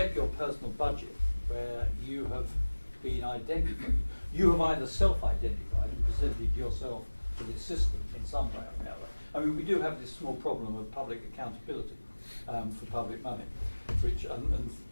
your personal budget where you have been identified. You have either self-identified and presented yourself to the system in some way or another. I mean, we do have this small problem of public accountability for public money, which and a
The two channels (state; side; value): inverted; both; correlation -1.00